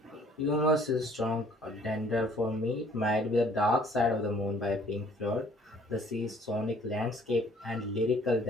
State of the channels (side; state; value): both; normal; correlation 0.58